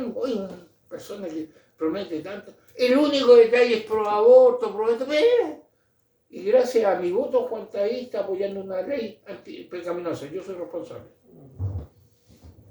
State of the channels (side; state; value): both; identical; correlation 1.00